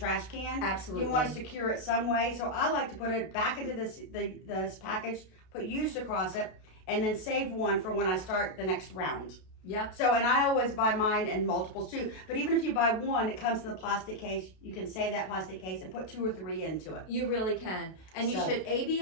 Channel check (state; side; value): late; right; 32 ms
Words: can. Absolutely. You want to secure it some way, so I like to put it back into this package, put used across it, and then save one for when I start the next round. Yep. So, and I always buy mine in multiples too. But even if you buy one, it comes in the plastic case. You can save that plastic case and put 2 or 3 into it. You really can. And you So- should